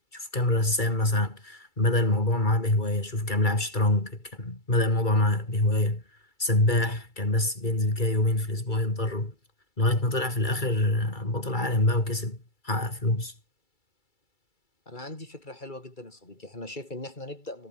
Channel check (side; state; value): right; late; 2.3 ms